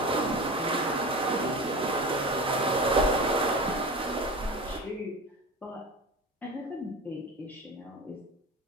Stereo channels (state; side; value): normal; both; correlation 0.30